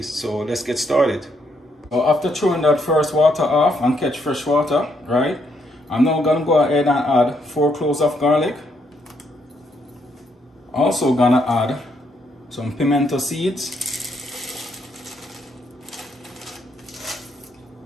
So let's get started. So after throwing that first water off and catch fresh water, right? I'm now going to go ahead and add 4 cloves of garlic. Also going to add some pimento seeds.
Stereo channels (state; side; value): normal; both; correlation 0.74